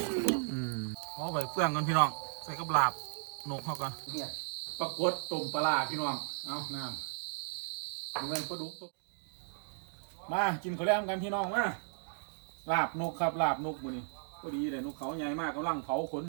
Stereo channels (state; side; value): silent; left; digital silence